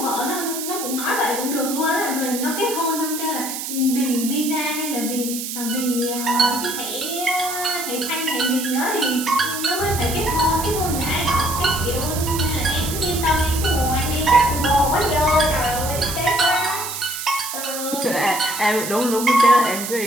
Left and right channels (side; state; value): right; noise; hiss, 6 dB below the sound